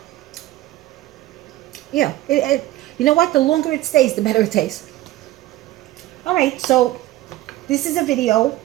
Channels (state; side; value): quieter; left; 16.1 dB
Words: Yeah, you know what? The longer it stays, the better it tastes. All right, so this is a video